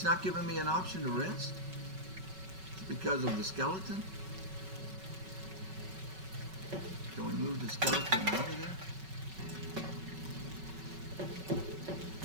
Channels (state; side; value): late; left; 5.3 ms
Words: not giving me an option to rest. It's because of the skeleton. Can we move the skeleton out of there?